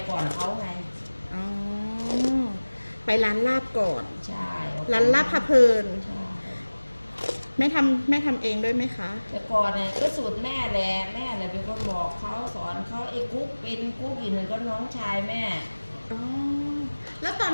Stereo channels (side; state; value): both; inverted; correlation -1.00